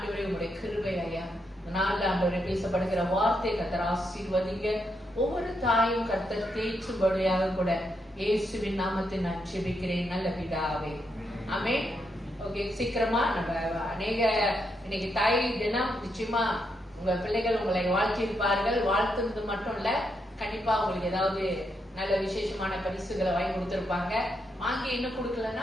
உங்களுடைய கிருபை ஐயா. நாள்ல ஆண்டவரே பேசப்படுகிற வார்த்தை கத்தர் ஆசீர்வதிங்க. ஒவ்வொரு தாயும் கத்தர் தேய்ச்சும்படியாக கூட இயேசுவின் நாமத்தில் நான் ஜெபிக்கிறேன் நல்ல பிதாவே, ஆமென். ஓகே, சீக்கிரமா நம்ம அநேக இன்னைக்கு தாய் தினம். நிச்சயமா உங்க பிள்ளைகள் உங்களை வாழ்த்தியிருப்பார்கள். வாழ்த்துறது மட்டும் இல்ல, கண்டிப்பா உங்களுக்கு ஏதாவது நல்ல விசேஷமான பரிசுகளை வாங்கி கொடுத்திருப்பாங்க. வாங்கி இன்னும்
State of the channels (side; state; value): both; normal; correlation 0.81